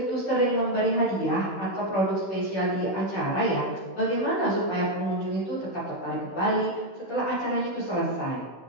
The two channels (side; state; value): right; late; 16 ms